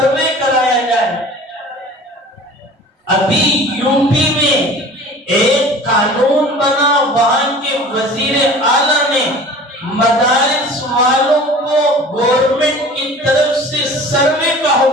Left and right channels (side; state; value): both; normal; correlation 0.42